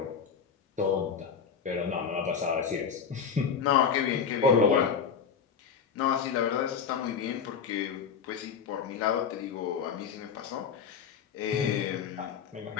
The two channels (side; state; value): right; quieter; 6.8 dB